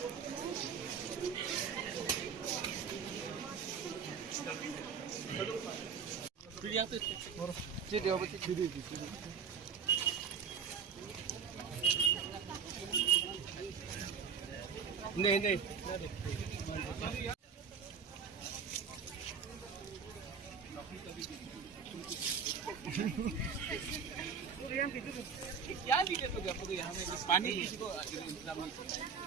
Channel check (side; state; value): left; quieter; 6.5 dB